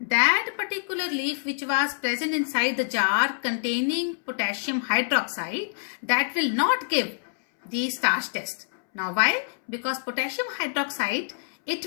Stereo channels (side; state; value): right; silent; 61 dB below the other